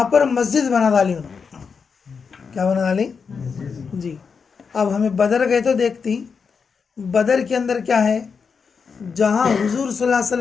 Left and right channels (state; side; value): quieter; right; 5.7 dB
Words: पर मस्जिद बना डाली उन्होंने। क्या बना डाली जी। अब हमें बदर गए तो देखती, बदर के अंदर क्या है, जहाँ हुजूर सल्लल्लाहु अलैहि